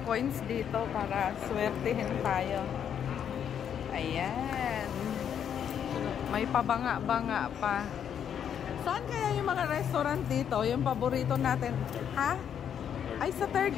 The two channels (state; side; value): quieter; right; 8.7 dB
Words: coins dito para swertihin tayo. Ayan. May pabanga-banga pa. Saan kaya yung mga restaurant dito? Yung paborito natin. Ha? Ay, sa third